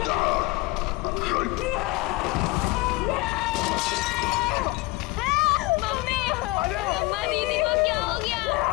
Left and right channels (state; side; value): quieter; right; 20.9 dB